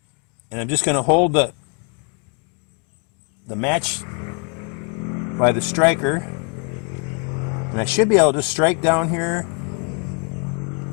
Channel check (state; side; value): quieter; right; 38.3 dB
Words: and I'm just going to hold the match by the striker, and I should be able to strike down here.